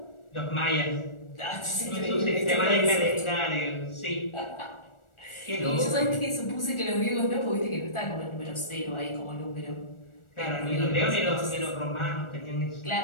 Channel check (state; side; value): late; right; 1.4 ms